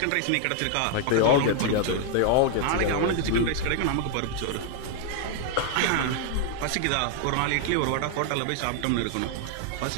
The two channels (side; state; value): both; different; correlation 0.00